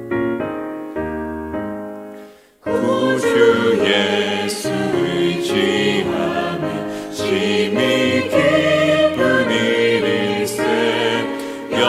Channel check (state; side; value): identical; both; correlation 1.00